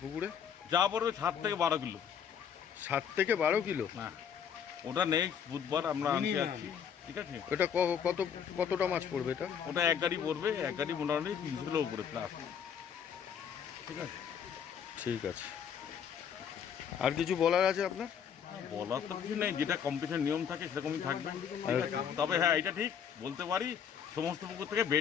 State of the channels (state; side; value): quieter; right; 7.9 dB